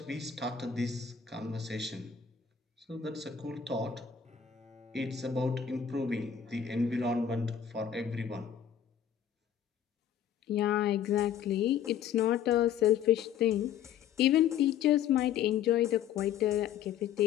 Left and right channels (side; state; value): right; quieter; 8.7 dB